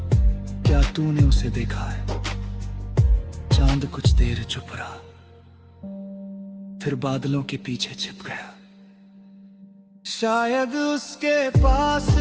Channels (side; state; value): both; identical; correlation 1.00